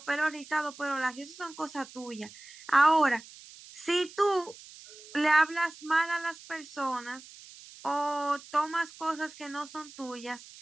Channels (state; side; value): noise; right; hiss, 18 dB below the sound